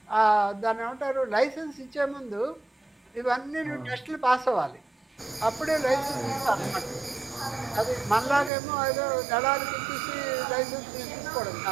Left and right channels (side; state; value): left; drops out; at 8.5 s